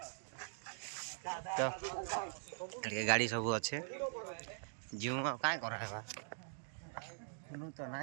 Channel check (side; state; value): left; silent; digital silence